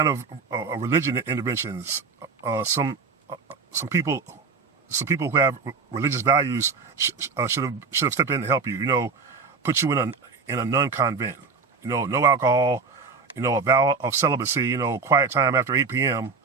of religion interventions. Some people who have religious values should have stepped in to help you. Put you in a nun convent. No alcohol. A vow of celibacy. Quiet time after 8 p.m.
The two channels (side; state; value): left; quieter; 4.9 dB